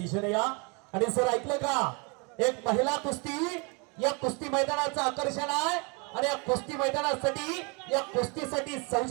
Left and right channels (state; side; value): quieter; left; 32.2 dB